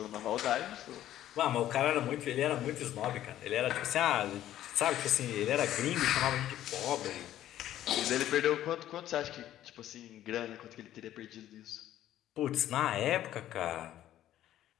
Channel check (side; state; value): right; quieter; 12.6 dB